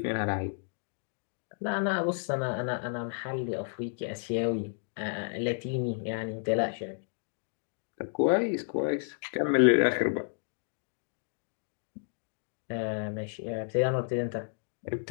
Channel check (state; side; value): silent; right; digital silence